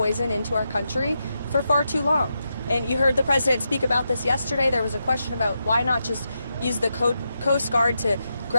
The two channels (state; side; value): inverted; both; correlation -0.86